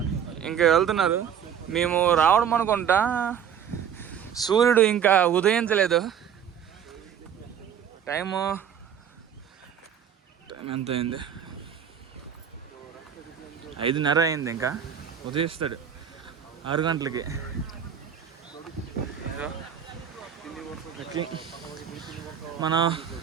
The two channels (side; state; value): left; quieter; 8.5 dB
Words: ఇంకా వెళ్తున్నారు. మేము రావడం అనుకుంటా సూర్యుడు ఇంకా ఉదయించలేదు. టైం ఎంత అయింది? 5:30 అయింది. ఇంకా ఉదయిస్తాడు 6 గంటలకి. మన